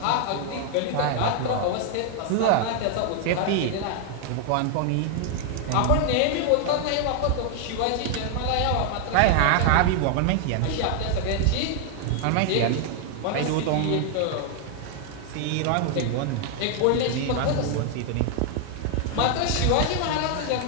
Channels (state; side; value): different; both; correlation 0.00